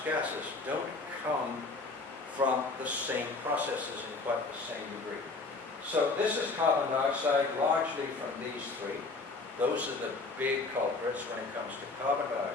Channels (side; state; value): right; quieter; 3.7 dB